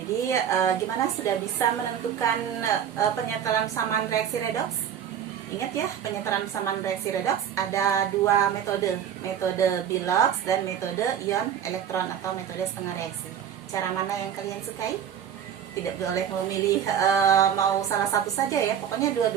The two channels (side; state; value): left; quieter; 9.0 dB